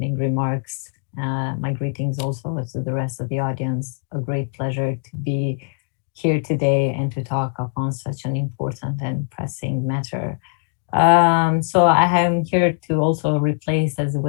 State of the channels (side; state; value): right; silent; digital silence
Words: remarks. My greetings also to the rest of the audience. A great pleasure to be here today and to talk upon such an important and pressing matter. So I am here to also replace, as it